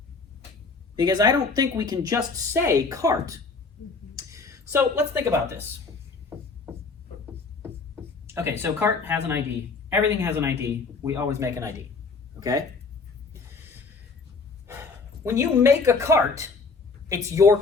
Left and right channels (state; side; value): quieter; right; 4.4 dB